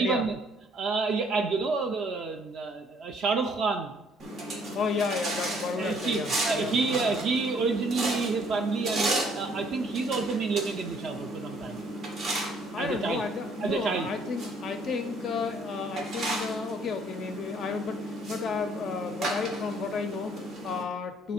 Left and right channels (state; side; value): normal; both; correlation 0.62